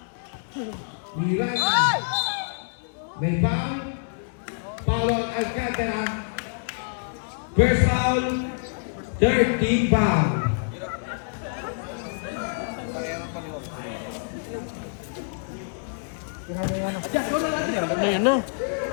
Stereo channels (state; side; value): silent; right; 61 dB below the other